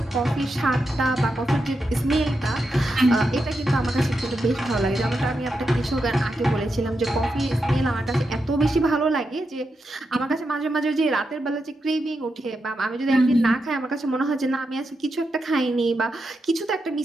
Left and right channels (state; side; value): normal; both; correlation 0.86